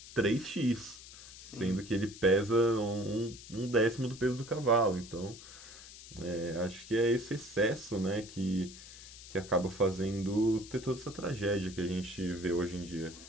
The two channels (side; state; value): left; noise; hiss, 16 dB below the sound